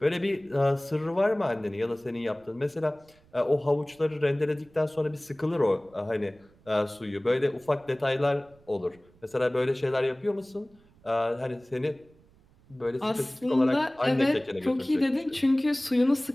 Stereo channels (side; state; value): right; noise; rumble, 29 dB below the sound